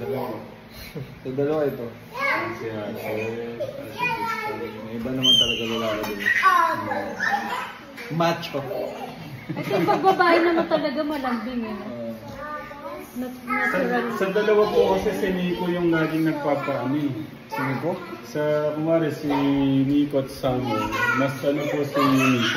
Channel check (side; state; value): both; identical; correlation 1.00